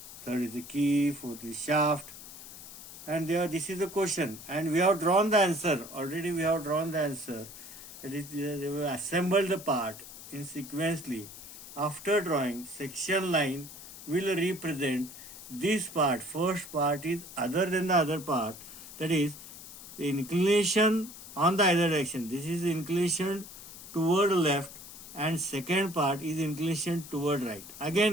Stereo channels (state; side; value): noise; left; hiss, 14 dB below the sound